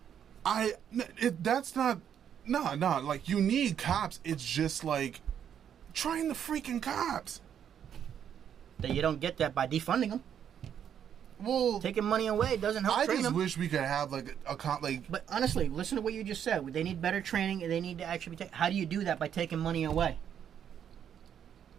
That's not... No, like, you need cops. It's just, like, train the freaking cops. That you don't get that by defunding them. Well, taking money away doesn't help train them. I just wish we could have like a But honestly, listen to what you just said. They need better training, and they need to actually be. How do you do that by taking money away?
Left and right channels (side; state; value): left; quieter; 8.9 dB